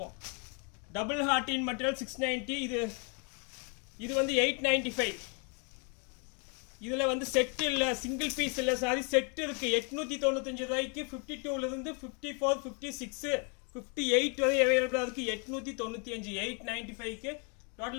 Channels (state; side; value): quieter; right; 36.5 dB